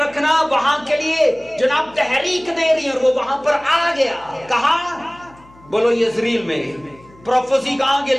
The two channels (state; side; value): noise; left; hum, 26 dB below the sound